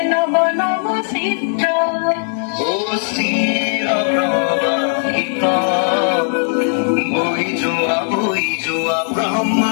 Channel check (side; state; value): right; silent; 68 dB below the other